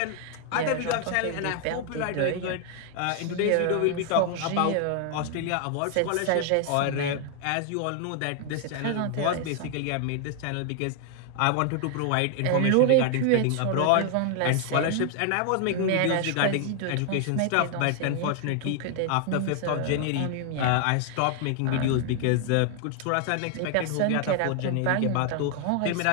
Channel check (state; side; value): different; both; correlation 0.00